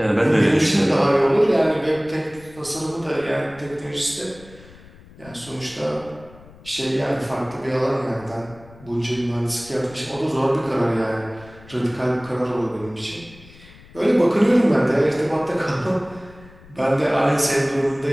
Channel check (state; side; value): noise; left; rumble, 22 dB below the sound